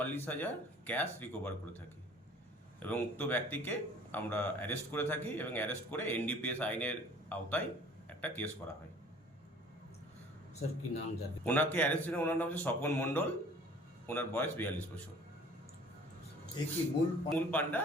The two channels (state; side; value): normal; both; correlation 0.50